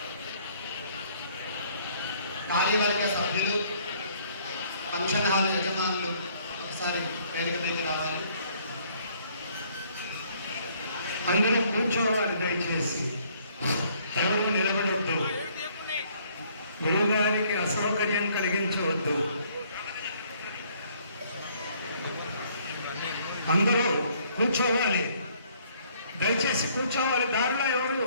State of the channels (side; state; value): both; inverted; correlation -0.63